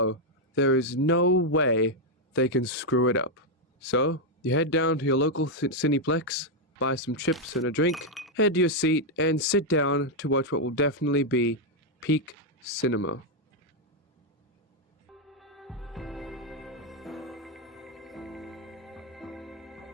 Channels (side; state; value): both; normal; correlation 0.00